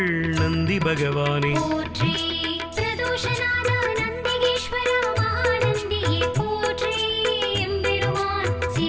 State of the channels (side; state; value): right; noise; hum, 27 dB below the sound